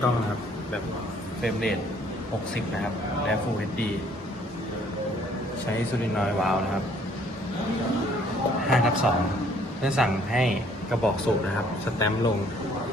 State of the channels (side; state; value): both; normal; correlation 0.61